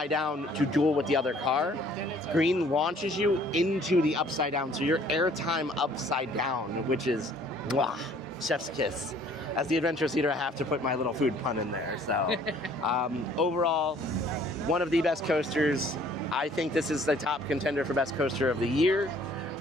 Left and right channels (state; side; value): normal; both; correlation 0.57